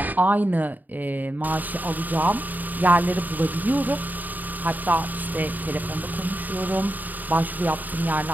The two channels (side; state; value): left; late; 0.085 ms